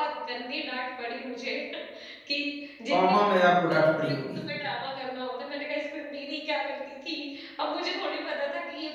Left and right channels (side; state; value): both; identical; correlation 1.00